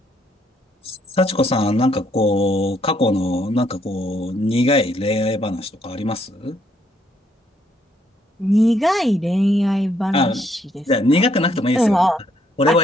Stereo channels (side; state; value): both; normal; correlation 0.71